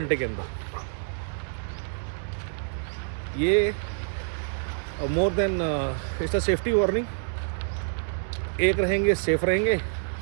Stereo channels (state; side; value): silent; left; 60 dB below the other